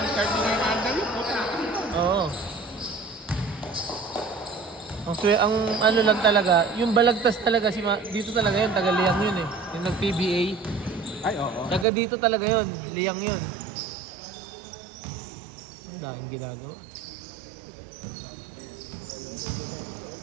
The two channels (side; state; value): left; drops out; at 11.9 s